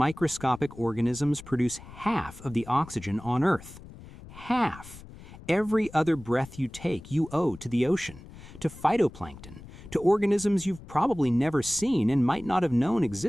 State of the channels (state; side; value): noise; left; rumble, 17 dB below the sound